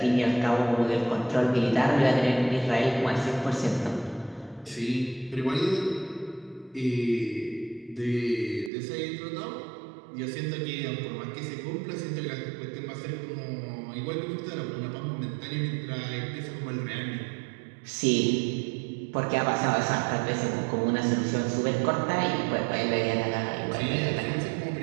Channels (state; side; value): drops out; left; at 8.7 s